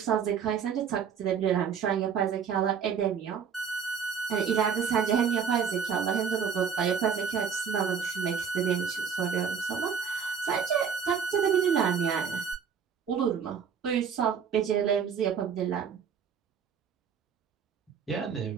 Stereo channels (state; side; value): quieter; left; 6.9 dB